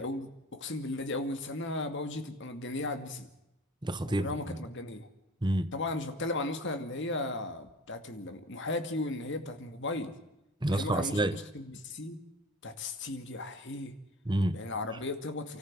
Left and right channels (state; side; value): normal; both; correlation 0.42